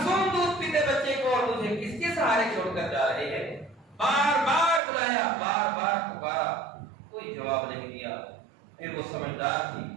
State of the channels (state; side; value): drops out; left; at 4.8 s